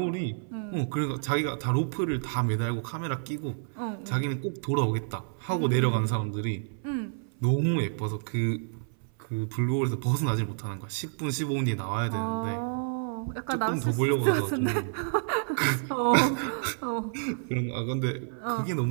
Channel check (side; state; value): left; silent; 58 dB below the other